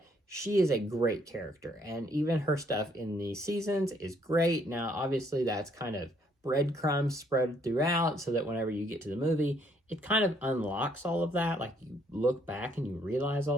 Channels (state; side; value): normal; both; correlation 0.67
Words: she is a great character, and even her stuff in the seasons is great. Now, obviously, that's kind of breadcrumbs spread throughout so that whenever you get to the movie, it kind of unlocks all of that. Like, you look back and you realize